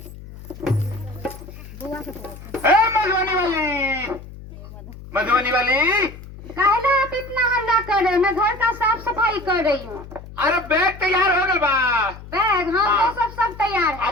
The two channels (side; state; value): left; noise; hum, 15 dB below the sound